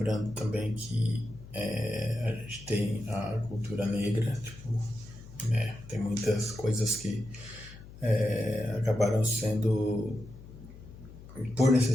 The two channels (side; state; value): left; noise; hum, 17 dB below the sound